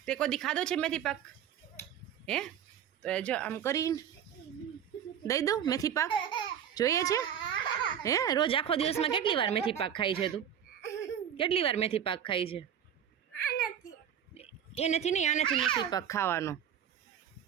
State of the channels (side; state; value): left; quieter; 9.1 dB